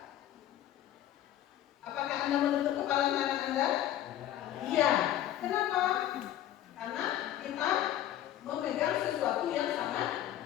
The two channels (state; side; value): quieter; right; 12.4 dB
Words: Apakah Anda menutup kepalan tangan Anda? Iya. Kenapa? Karena kita memegang sesuatu yang sangat